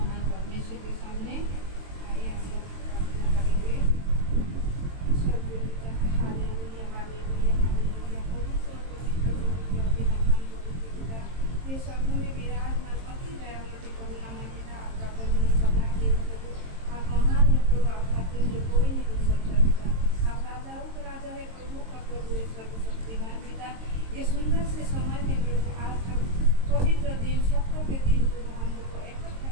परमेश्वर के सामने। आइए हम लोग प्रार्थना करेंगे। Hallelujah hallelujah hallelujah. प्रभु सर्वोच्च प्रभु अति महान पवित्र पिता, ये शब्दों में विराजमान अति दयालु करुणामय पिता, आपका करुणा सदा के प्रभु आप महान है प्रभु, आपका तुल्य कोई नहीं हो सकता पिता। आप राजाओं के राजा है, प्रभु का प्रभु है, सर्वशक्तिमान पिता। ये सुंदर से समय में प्रभु आज हम पवित्र दिन सप्ताह के दिन प्रभु हम लोग को इकट्ठा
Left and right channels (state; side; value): late; left; 22 ms